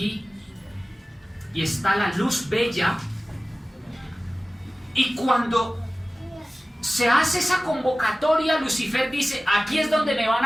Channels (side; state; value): both; normal; correlation 0.97